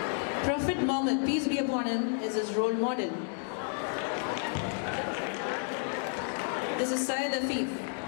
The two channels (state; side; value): silent; right; 57 dB below the other